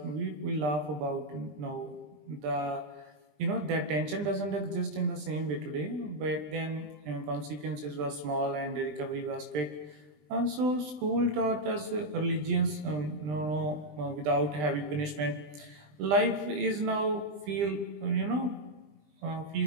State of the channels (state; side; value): late; left; 20 ms